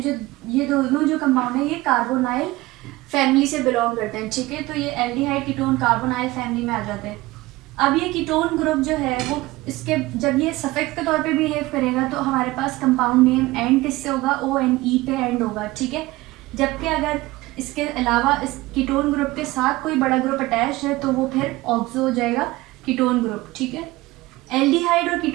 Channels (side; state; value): left; quieter; 19.6 dB